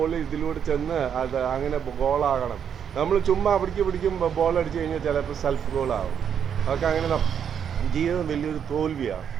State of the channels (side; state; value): left; quieter; 8.1 dB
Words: ഇതിലൂടെ ചെന്ന് അത് അങ്ങനെ ഗോളാകണം. നമ്മൾ ചുമ്മാ പിടിക്കും ബോൾ അടിച്ചു കഴിഞ്ഞാൽ ചിലപ്പോൾ സെൽഫ് ഗോളാവും. അതൊക്കെ അങ്ങനെ ജീവിതം വലിയൊരു തോൽവിയാണ്.